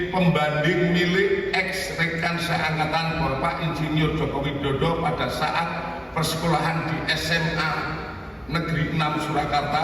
pembanding milik ex rekan seangkatan Bapak Insinyur Joko Widodo pada saat persekolahan di SMA Negeri 6 Surakarta,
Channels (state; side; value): identical; both; correlation 1.00